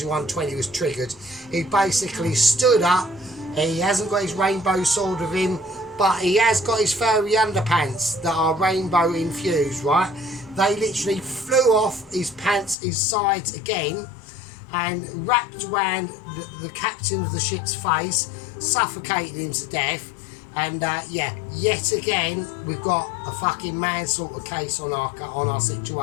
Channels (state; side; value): drops out; right; at 12.8 s